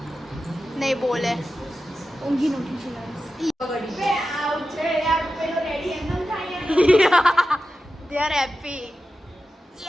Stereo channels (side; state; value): both; normal; correlation 0.92